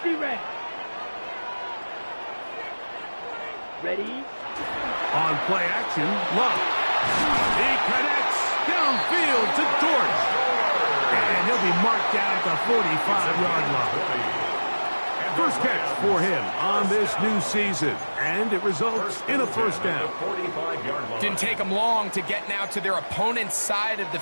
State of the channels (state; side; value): inverted; both; correlation -1.00